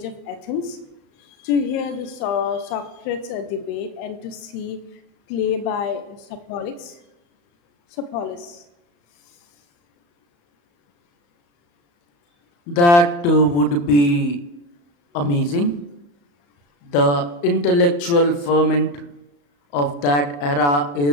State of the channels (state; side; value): late; right; 35 ms